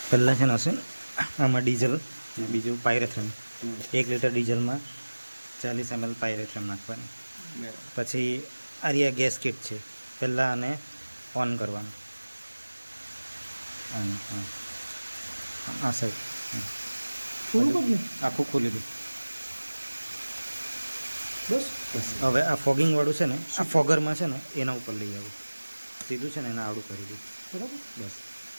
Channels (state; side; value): inverted; both; correlation -1.00